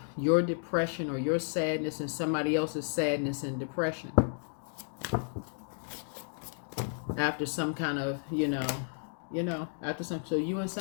your depression or your sadness and somebody else's sadness and depression. After some kind of, so you and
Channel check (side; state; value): right; silent; digital silence